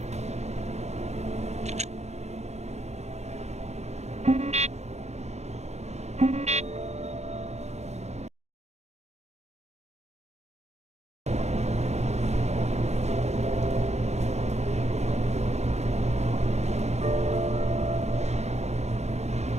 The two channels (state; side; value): late; left; 0.32 ms